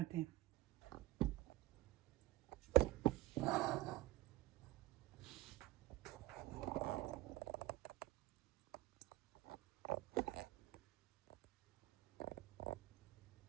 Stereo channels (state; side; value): quieter; left; 17.2 dB